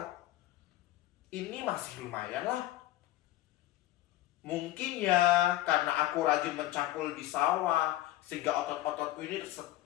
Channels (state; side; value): quieter; right; 15.5 dB